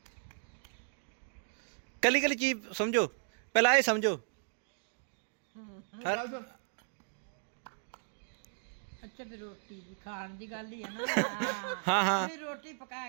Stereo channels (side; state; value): left; silent; digital silence